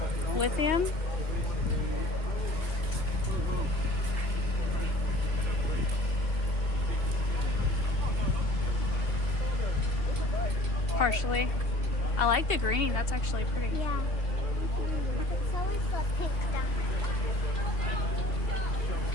Lithium. Partially. I like the green. That's actually pretty. Yeah. It's always the pink stuff.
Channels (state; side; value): late; right; 2.8 ms